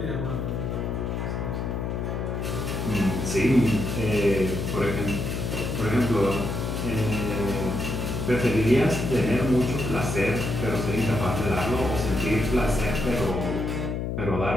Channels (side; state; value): left; noise; hum, 2 dB below the sound